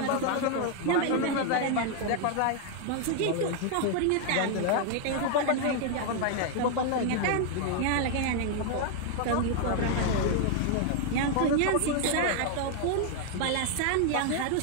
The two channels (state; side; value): different; both; correlation 0.00